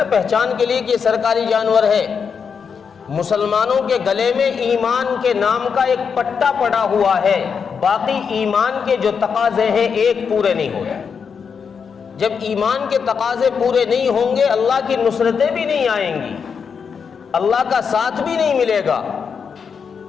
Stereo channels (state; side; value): quieter; right; 6.3 dB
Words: پہچان کے لیے کہ یہ سرکاری جانور ہے، مسلمانوں کے گلے میں ایمان کے نام کا ایک پٹا پڑا ہوا ہے، باقی ایمان کے جو تقاضے ہیں ایک پورے نہیں ہوتے۔ جب ایمان کے تقاضے پورے نہیں ہوں گے، اللہ کی نصرتیں بھی نہیں آئیں گی، اللہ کا ساتھ بھی نہیں ملے گا۔